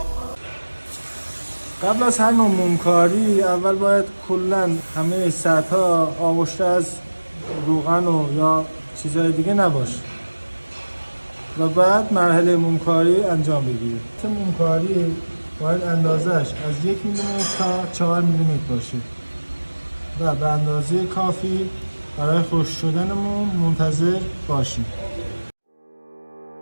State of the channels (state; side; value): inverted; both; correlation -1.00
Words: قبل از هر نوع مومکاری اول باید کلا همه سطح‌ها آغشته از روغن و یا چیزهای دیگه نباشه و بعد مرحله مومکاری انجام بگیرید. مومکاری باید اندازش از 1 میلیمتر تا 4 میلیمتر باشه و به اندازه کافی برای خشک شدن موم منتظر باشیم.